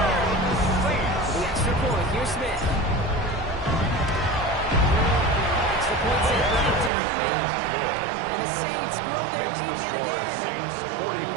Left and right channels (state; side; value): drops out; left; at 6.9 s